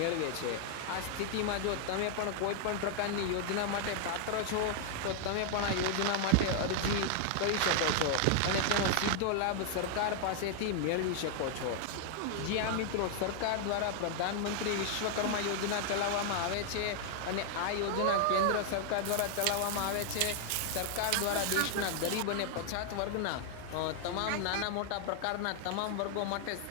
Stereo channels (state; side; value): different; both; correlation 0.00